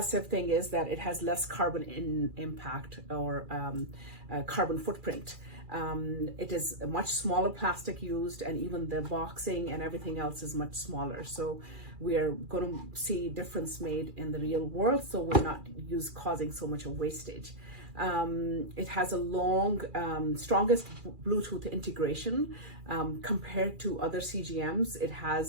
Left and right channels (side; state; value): left; late; 2.4 ms